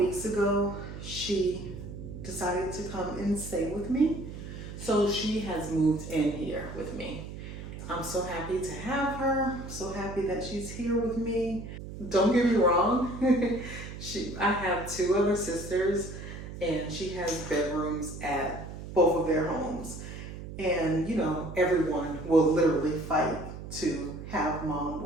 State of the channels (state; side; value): noise; right; hum, 10 dB below the sound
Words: ago, she decided to come and stay with me. So she has moved in here with me. I'm so happy to have her, so happy that she's here with me. Don't get me wrong, I have 2 other sisters and she has bedrooms at both of their homes. And you know, everyone will literally fight to have mom